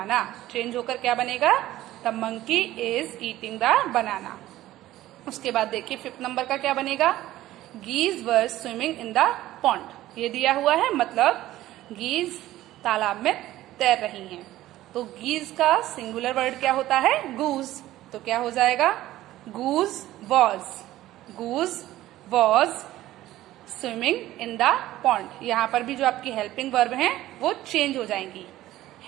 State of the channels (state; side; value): quieter; left; 15.1 dB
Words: change होकर क्या बनेगा, the monkey is eating the banana. उसके बाद देखिए 5th नंबर का क्या बनेगा, geese were swimming in the pond. ये दिया हुआ है, मतलब गीज तालाब में तैर रही हैं। तो गीज का सिंगुलर वर्ड क्या होता है, गूज। तो क्या हो जाएगा, goose was swimming in the pond. यहाँ पर भी जो आपकी हेल्पिंग वर्ब हैं वो चेंज हो जाएंगी,